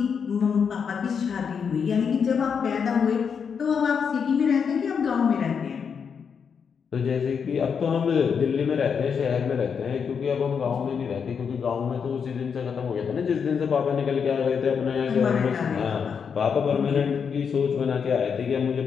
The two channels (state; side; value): quieter; right; 6.6 dB